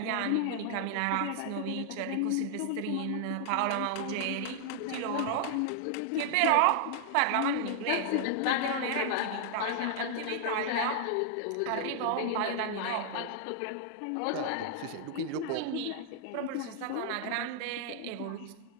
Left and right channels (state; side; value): different; both; correlation -0.01